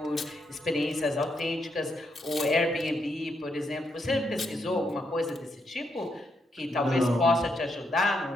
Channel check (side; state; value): both; normal; correlation 0.79